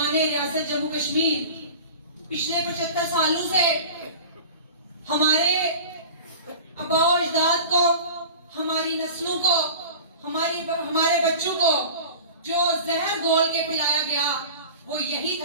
ریاست جموں کشمیر، پچھلے 75 سالوں سے ہمارے آباء و اجداد کو، ہماری نسلوں کو، ہمارے بچوں کو جو زہر گھول کے پلایا گیا وہ یہی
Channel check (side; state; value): both; inverted; correlation -0.36